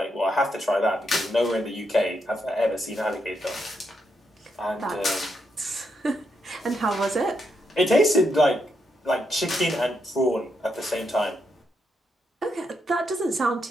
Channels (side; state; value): both; normal; correlation 0.80